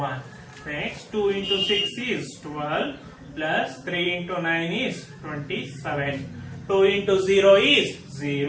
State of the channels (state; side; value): identical; both; correlation 1.00